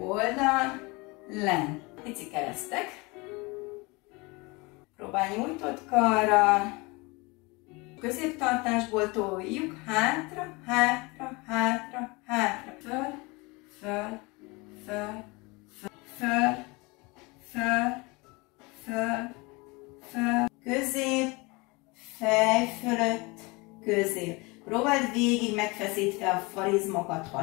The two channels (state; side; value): quieter; right; 26.0 dB